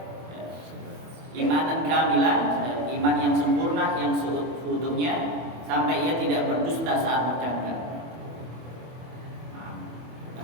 imanan kamilan, iman yang sempurna, yang seutuhnya, sampai ia tidak berdusta saat bercanda.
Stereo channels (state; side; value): late; left; 25 ms